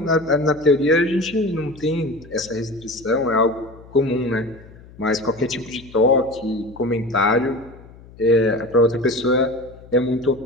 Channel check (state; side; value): noise; left; hum, 21 dB below the sound